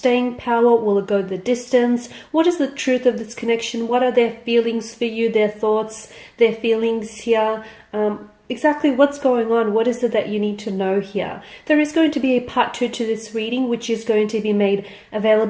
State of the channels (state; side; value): identical; both; correlation 1.00